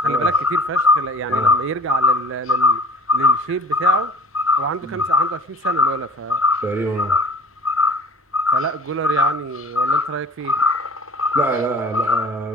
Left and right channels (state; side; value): normal; both; correlation 0.46